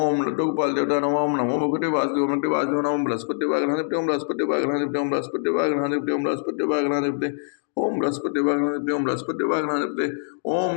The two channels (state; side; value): silent; right; digital silence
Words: लड्डू गोपाल देवता नमः। ओम नमो भगवते वासुदेव नमः वासुदेव नमः। बृहस्पति वागणाधिपति ओम बृहस्पति वागणाधिपति ओम बृहस्पति वागणाधिपति ओम बृहस्पति वागणाधिपति ओम बृहस्पति वागणाधिपति ओम बृहस्पति वागणाधिपति ओम